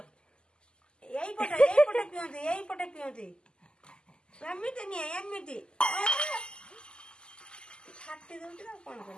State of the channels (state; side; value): late; right; 0.048 ms